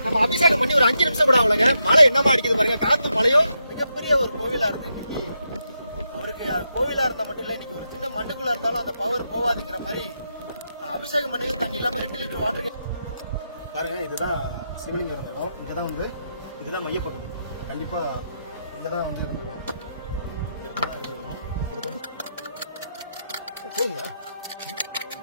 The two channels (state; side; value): inverted; both; correlation -0.83